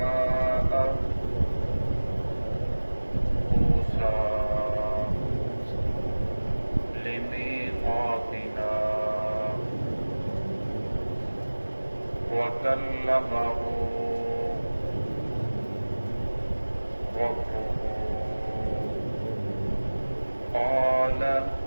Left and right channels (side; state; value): both; inverted; correlation -1.00